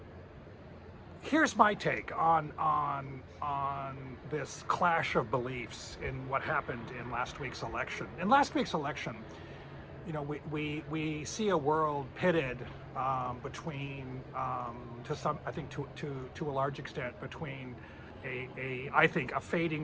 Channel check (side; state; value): both; identical; correlation 1.00